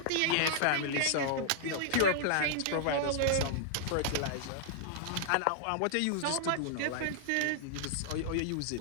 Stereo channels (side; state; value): both; different; correlation -0.01